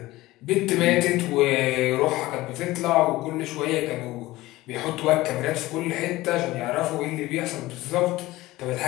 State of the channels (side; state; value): right; quieter; 18.1 dB